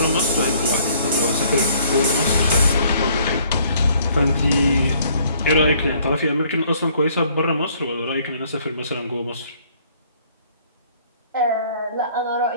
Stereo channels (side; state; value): both; inverted; correlation -0.61